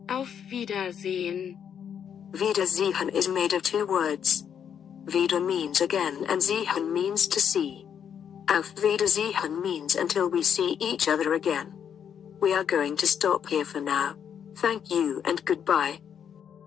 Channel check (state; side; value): quieter; right; 8.3 dB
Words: auf Wiedersehen. Wiedersehen is made of two words. Wieder means again and sehen means to see. Auf Wiedersehen means until we see each other again. We are going to stop here for now. Thank you and goodbye.